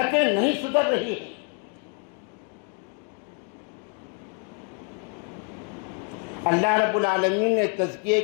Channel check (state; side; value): quieter; right; 35.8 dB